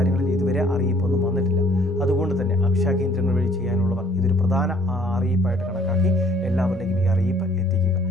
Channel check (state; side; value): normal; both; correlation 0.59